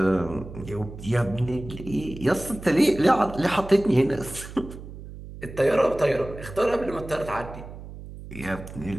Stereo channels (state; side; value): noise; right; hum, 13 dB below the sound